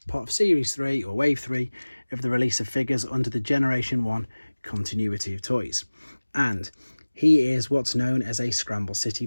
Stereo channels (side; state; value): both; inverted; correlation -1.00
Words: part of Series 3 or Wave 3 of the release of figures under the Generation 1 continuity of toys. And he is what's known as a Scramble City